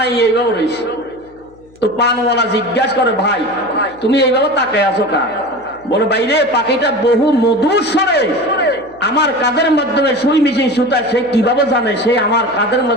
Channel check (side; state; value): left; noise; hum, 28 dB below the sound